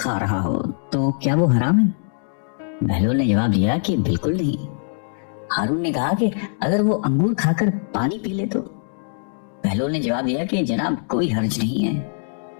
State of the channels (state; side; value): silent; right; digital silence